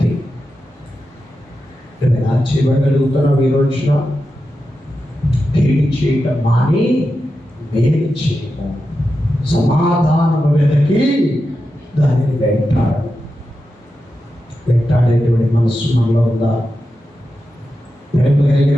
నువ్వు ఎలా చేయబడగలుగుతున్నావు? ఈ రోజున కీడు చేయటం మాని మేలు చేయము, సమాధానము వెదకి దానిని వెంటాడేటువంటి మనస్సు మనలో ఉందా? ప్రేమ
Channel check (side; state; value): both; normal; correlation 0.90